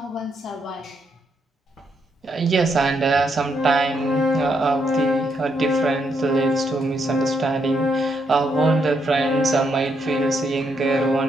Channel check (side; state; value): both; normal; correlation 0.77